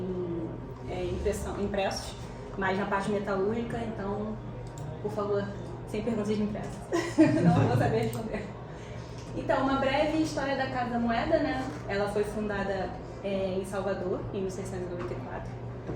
impressos, mas na parte metalúrgica, então, por favor, sem perguntas impressas, não vou saber responder. Então, uma breve história da Casa da Moeda, né? Ela foi fundada em Salvador, em 1694.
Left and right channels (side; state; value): both; identical; correlation 1.00